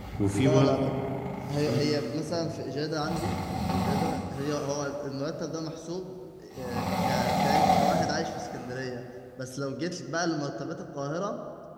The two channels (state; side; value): identical; both; correlation 1.00